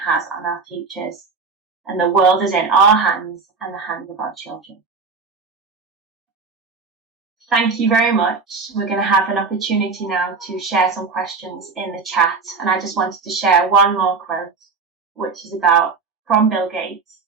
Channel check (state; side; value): quieter; left; 4.7 dB